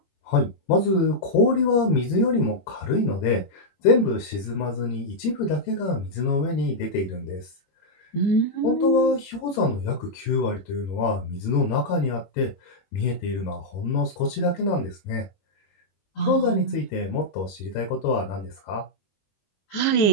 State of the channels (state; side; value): late; right; 21 ms